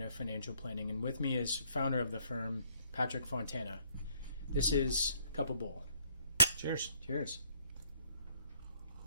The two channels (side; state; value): both; inverted; correlation -0.66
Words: Financial Planning, and with me is founder of the firm, Patrick Fontana. This is Cup of Bull. Cheers. Cheers.